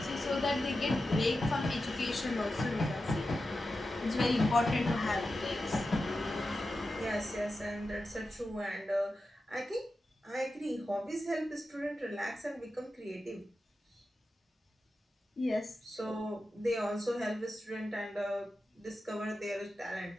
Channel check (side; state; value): both; normal; correlation 0.91